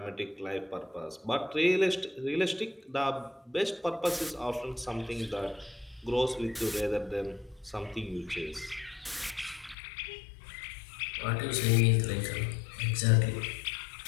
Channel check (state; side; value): drops out; right; at 9.8 s